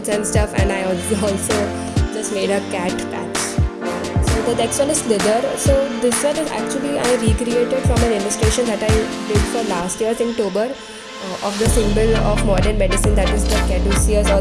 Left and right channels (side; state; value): both; identical; correlation 1.00